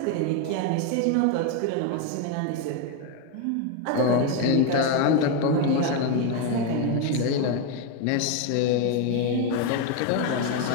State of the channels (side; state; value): both; different; correlation 0.02